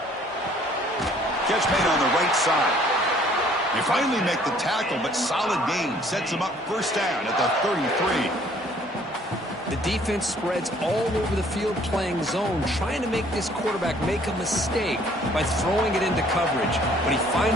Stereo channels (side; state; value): both; normal; correlation 0.59